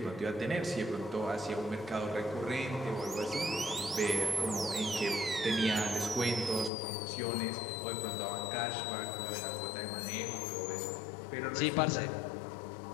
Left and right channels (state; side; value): drops out; right; at 6.7 s